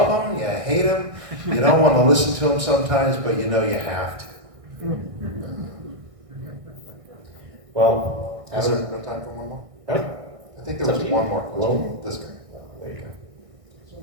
him, you hate him, you don't want to listen to him sometimes, but you know you have to. Well, Is there no time for one more? No. I think there was one more question. This guy. There you go. So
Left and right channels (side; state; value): left; late; 1.6 ms